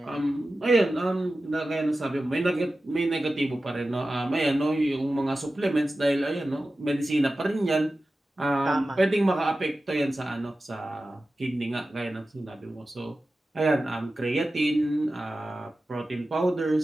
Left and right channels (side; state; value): both; normal; correlation 0.94